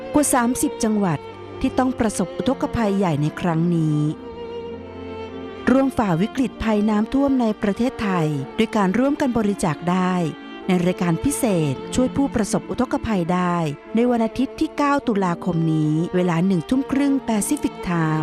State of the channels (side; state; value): both; identical; correlation 1.00